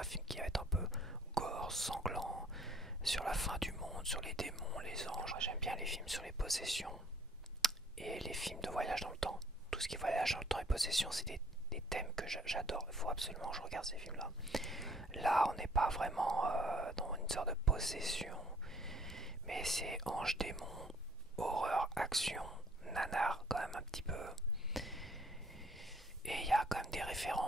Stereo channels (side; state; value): both; normal; correlation 0.60